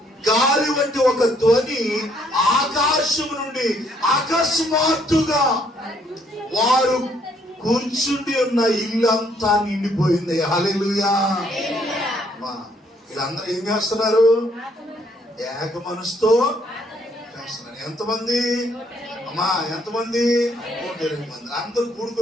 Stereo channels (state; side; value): normal; both; correlation 0.68